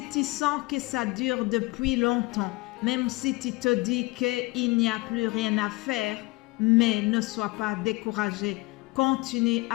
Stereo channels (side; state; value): right; quieter; 23.6 dB